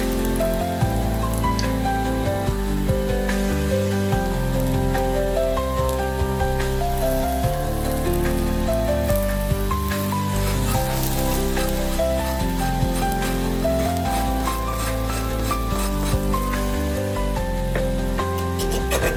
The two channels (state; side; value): identical; both; correlation 1.00